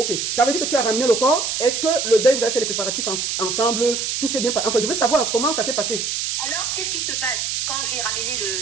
Ça veut dire que tu as ramené le corps. Est-ce que le deuil, vous avez fait les préparatifs ensemble? Tout s'est bien passé? Enfin, je veux savoir comment ça s'est passé. Alors, qu'est-ce qui se passe? Quand j'ai ramené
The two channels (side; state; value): right; noise; hiss, 1 dB below the sound